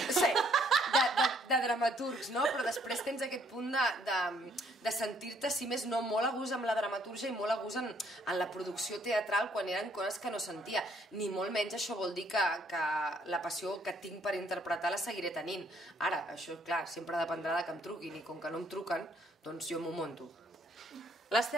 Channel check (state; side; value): normal; both; correlation 0.66